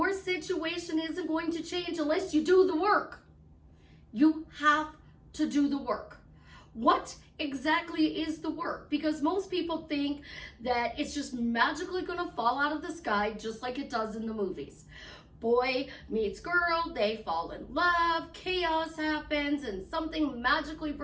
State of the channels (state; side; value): identical; both; correlation 1.00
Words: situation isn't going to change unless you do the work. You have to do the work. What exactly is the work? Because most people think that it's just magically going to fall out of the sky just like it does in the movies. Boy meets girl, they fall in love, chaos happens, and something magically